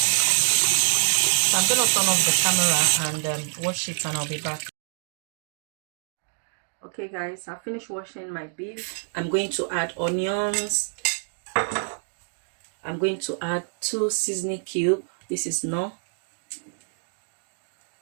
So I'm gonna turn off the camera and wash it, and I'll be back. Okay guys, I finished washing my beef. I'm going to add onions. I'm going to add 2 seasoning cubes. This is no.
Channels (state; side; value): silent; left; digital silence